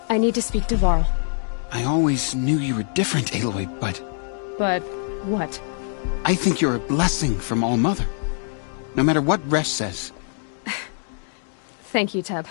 I need to speak to Varl. I always knew you were different, Aloy, but... But what? I think you're a blessing from All-Mother. No matter what Resh says. Thank you, Teb.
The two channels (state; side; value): silent; right; digital silence